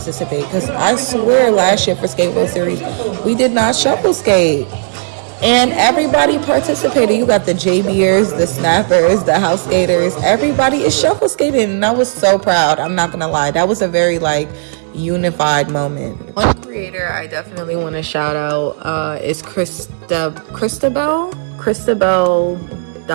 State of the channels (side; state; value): left; silent; digital silence